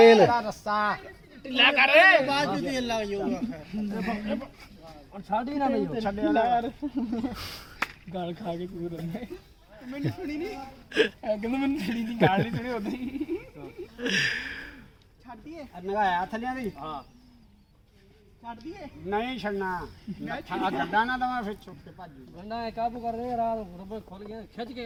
ਇਹਦਾ ਰੱਸਾ ਢਿੱਲਾ ਕਰ ਬਾਅਦ ਚ ਤੇਲ ਲੱਗ ਜਾਊਗਾ ਔਰ ਛਾੜੀ ਨਾ ਨਹੀਂ ਛੱਡਿਆ ਯਾਰ ਗਾਲ ਖਾ ਕੇ ਕੂਦ ਰਹੇ ਮੈਨੂੰ ਸੁਣੀ ਨਹੀਂ ਕਹਿੰਦਾ ਮੈਨੂੰ ਸੁਣੀ ਦੀ ਗਾਲ ਨਹੀਂ ਸੁਣੀ ਉਦੋਂ ਹੀ ਛੱਡੀਏ ਨਗਾਇਆ ਥੱਲਿਆਂ ਦੀ ਹਾਂ ਛੱਡ ਦਈਏ ਨਹੀਂ ਛੱਡਣਾ ਆ ਗੱਡਾ ਨਾ ਦਵਾ ਫਿਰ ਚੁੱਕ ਕੇ ਭੱਜ ਜੂ। ਗੰਡਾ ਇਹ ਕਾਬੂ ਕਰ ਦੇ ਰਾਤ ਰੁਪਏ ਖੁੱਲ ਗਿਆ ਖਿੱਚ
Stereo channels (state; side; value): identical; both; correlation 1.00